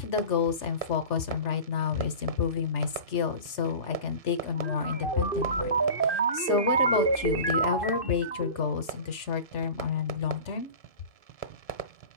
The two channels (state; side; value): late; right; 3.4 ms